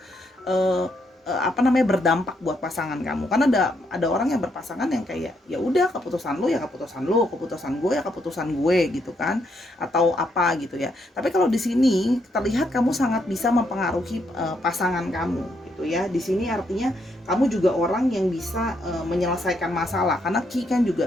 berdampak buat pasangan kamu. Karena ada orang yang berpasangan yang kayak ya udah keputusan lu ya keputusan lu, keputusan gue ya keputusan gue gitu kan, atau apa gitu ya. Tapi kalau di sini terlihat kamu sangat bisa mempengaruhi pasangan kamu gitu ya. Di sini artinya kamu juga orang yang bisa menyelesaikan masalah, karena key kan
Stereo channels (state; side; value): normal; both; correlation 0.76